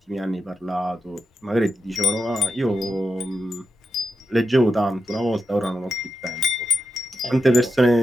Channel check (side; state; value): both; normal; correlation 0.88